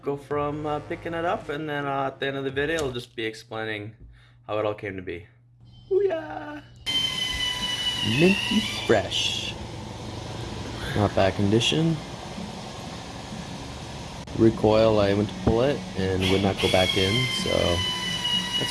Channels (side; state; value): both; identical; correlation 1.00